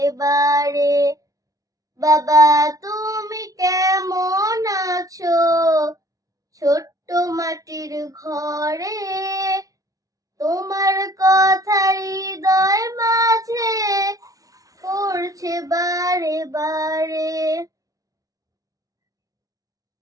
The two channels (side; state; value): left; late; 0.17 ms